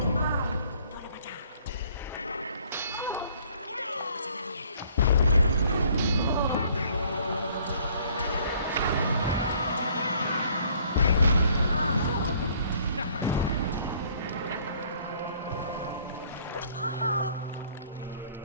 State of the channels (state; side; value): inverted; both; correlation -0.59